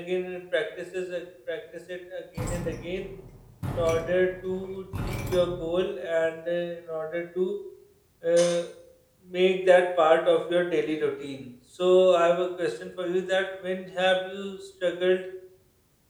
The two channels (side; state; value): both; identical; correlation 1.00